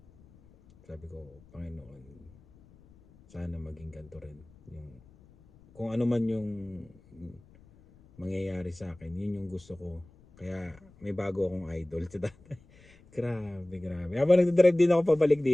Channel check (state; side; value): noise; left; rumble, 26 dB below the sound